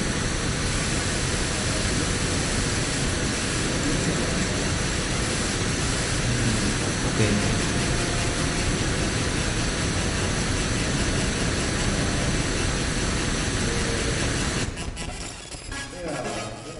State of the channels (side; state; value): both; identical; correlation 1.00